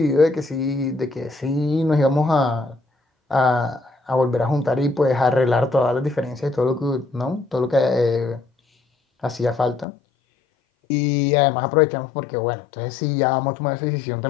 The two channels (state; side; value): drops out; right; at 9.9 s